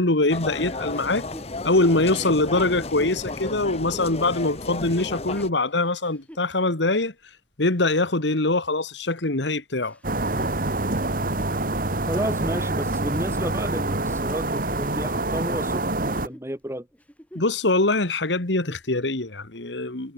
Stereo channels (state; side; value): normal; both; correlation 0.09